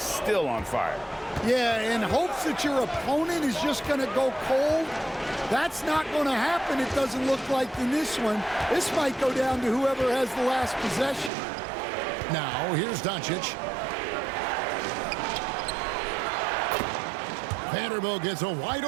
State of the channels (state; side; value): drops out; left; at 11.3 s